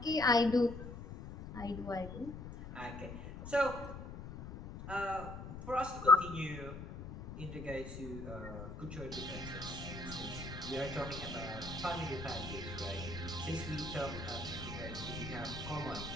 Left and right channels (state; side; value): noise; left; rumble, 10 dB below the sound